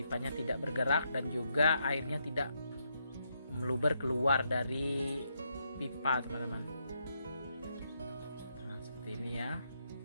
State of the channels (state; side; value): inverted; both; correlation -0.78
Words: tidak bergerak dan juga airnya tidak meluber keluar dari pipa teman-teman. Nah, seperti ini ya,